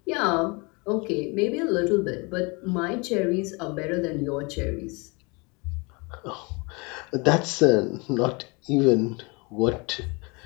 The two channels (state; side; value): quieter; right; 29.2 dB